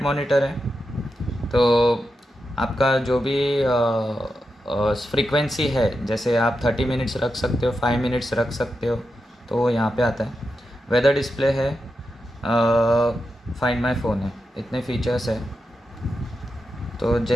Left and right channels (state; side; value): normal; both; correlation 0.88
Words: मॉनिटर है, तो आपका जो भी फ्रीक्वेंसी है, जैसे आप 30 मिनट्स रख सकते हो, 5 मिनट्स रख सकते हो, तो वो यहाँ पे आता है। वेदर डिस्प्ले है, फाइंड माय फ़ोन है, इतने फीचर्स है। तो